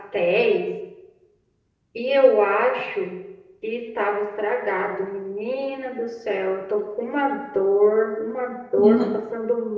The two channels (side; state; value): both; identical; correlation 1.00